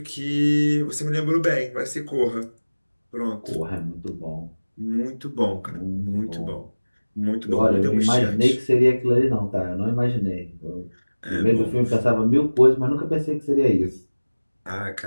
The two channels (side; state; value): both; inverted; correlation -1.00